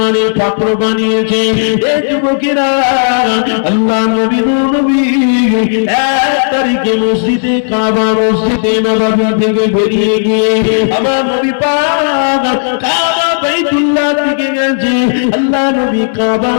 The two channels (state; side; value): silent; right; digital silence